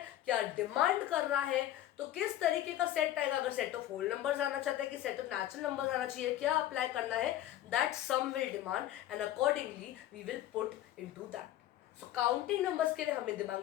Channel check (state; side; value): quieter; right; 13.1 dB